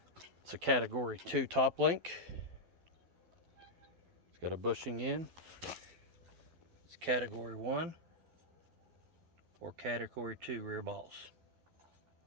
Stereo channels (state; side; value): late; left; 12 ms